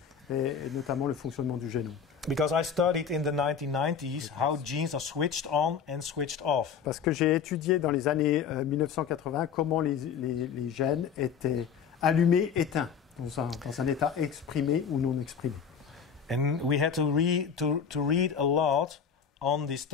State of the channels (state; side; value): quieter; right; 7.0 dB